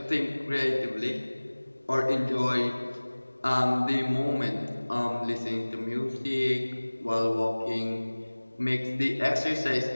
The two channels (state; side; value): inverted; both; correlation -1.00